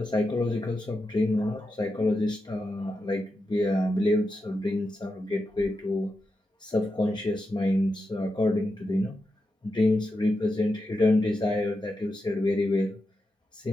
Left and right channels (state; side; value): normal; both; correlation 0.88